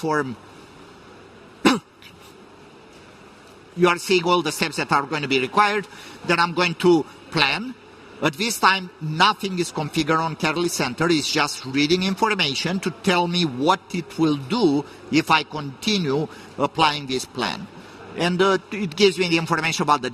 You are seeing all the steps that are going to be required. Then I'm going to plan. At this time, nothing is configured on Catalyst Center. It's just reading information to tell me what it will do if I continue applying this plan. And it gives me the information about the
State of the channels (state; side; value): identical; both; correlation 1.00